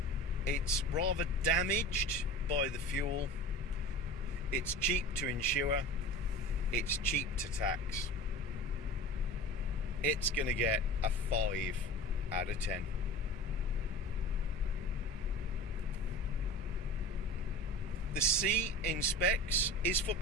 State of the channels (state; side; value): normal; both; correlation 0.35